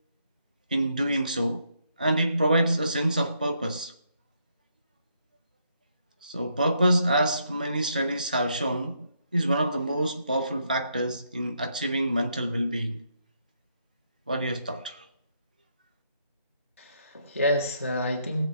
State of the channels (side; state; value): both; inverted; correlation -0.75